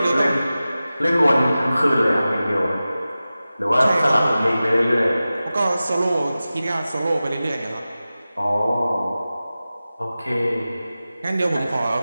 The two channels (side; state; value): both; inverted; correlation -0.95